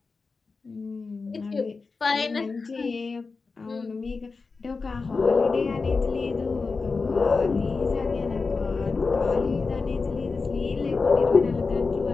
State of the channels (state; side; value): quieter; right; 4.3 dB